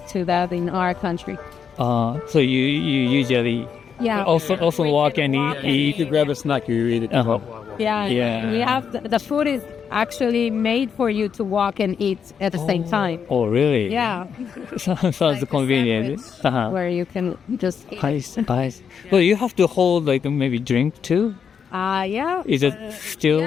to that in our country. So you usually also walk and eat. You grab a snack, you eat it. We have the food is actually made for you to walk and eat at the same time. Oh, really? Yeah. Sounds convenient. Where you can just eat. Nice. Well, you have to hold maybe drink too? Yeah. Is it still,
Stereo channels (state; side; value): quieter; right; 7.0 dB